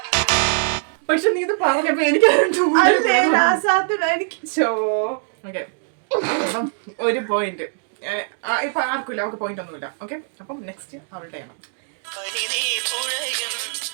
പക്ഷെ നീ ഇത് പറഞ്ഞപ്പോ എനിക്ക് ഒരു പോയിന്റ് ഇപ്പൊ ആർക്കില്ല, അവർക്ക് പോയിന്റ് ഒന്നുമില്ല. ഓക്കെ, അപ്പം നെക്സ്റ്റ് അവളുടെ ആണ്.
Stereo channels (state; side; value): silent; left; 64 dB below the other